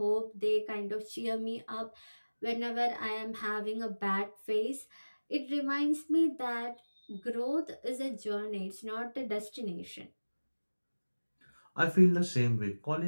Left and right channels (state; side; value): inverted; both; correlation -1.00